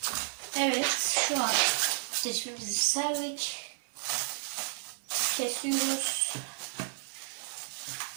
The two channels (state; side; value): silent; left; 56 dB below the other